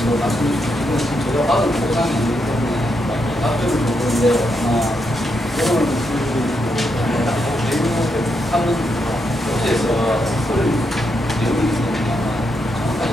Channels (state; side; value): normal; both; correlation 0.81